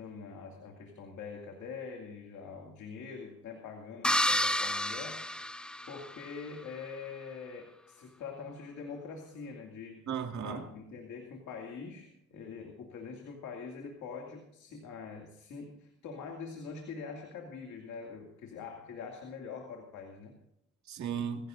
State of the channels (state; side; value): normal; both; correlation 0.47